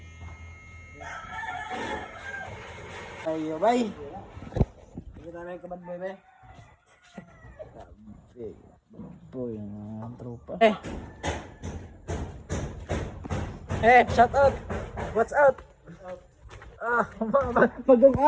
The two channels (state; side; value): identical; both; correlation 1.00